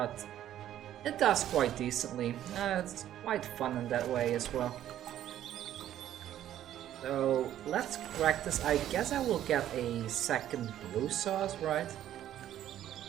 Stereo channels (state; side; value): quieter; left; 11.8 dB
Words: it does quite decently. It's quite fun in that way as well. So let's crack this. I guess I will get a second blue sauce, right?